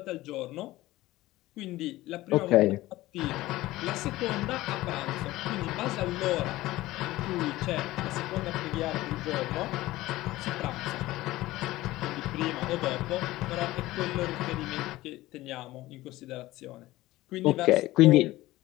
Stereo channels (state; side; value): quieter; right; 17.5 dB